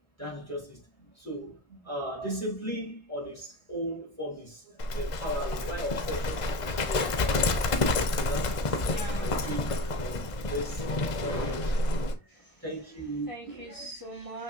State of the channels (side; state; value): right; late; 1.5 ms